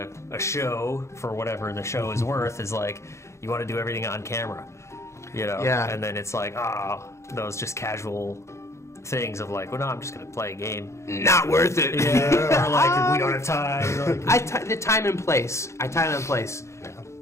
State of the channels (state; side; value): late; right; 0.14 ms